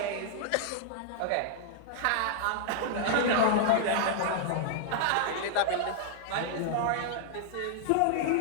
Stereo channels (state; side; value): different; both; correlation -0.01